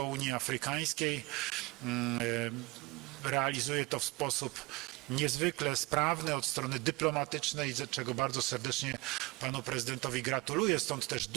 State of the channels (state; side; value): quieter; left; 23.7 dB